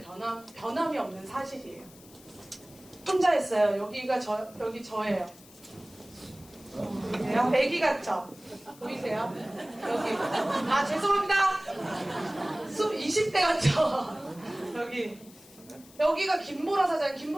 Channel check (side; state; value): left; noise; hiss, 23 dB below the sound